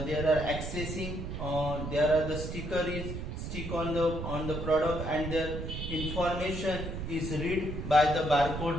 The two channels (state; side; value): noise; right; rumble, 6 dB below the sound